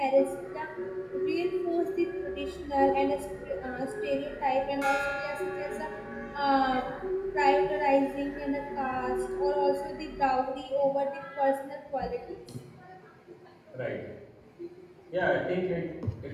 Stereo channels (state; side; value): identical; both; correlation 1.00